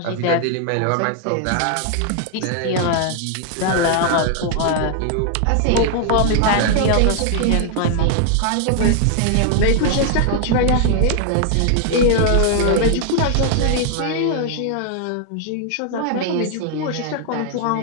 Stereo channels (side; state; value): both; different; correlation 0.00